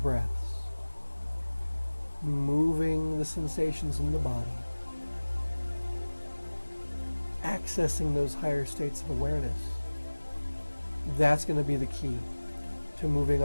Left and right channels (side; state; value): both; inverted; correlation -1.00